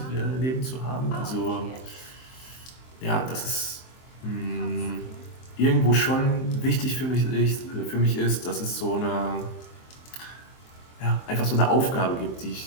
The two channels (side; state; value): right; late; 23 ms